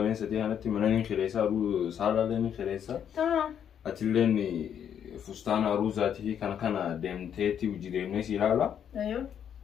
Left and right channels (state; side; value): quieter; right; 8.8 dB